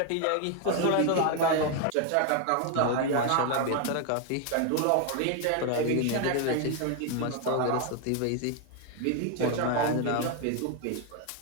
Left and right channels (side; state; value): both; different; correlation 0.01